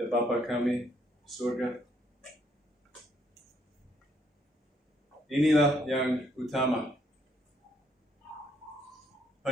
Bapa kami di surga, inilah yang utama,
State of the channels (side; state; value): both; normal; correlation 0.70